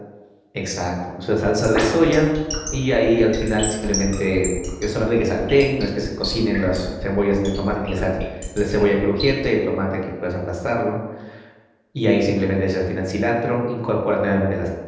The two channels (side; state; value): both; identical; correlation 1.00